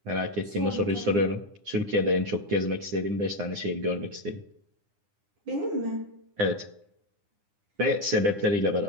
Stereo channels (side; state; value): left; late; 9.9 ms